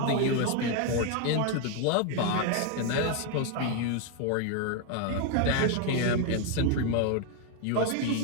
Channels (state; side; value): different; both; correlation 0.01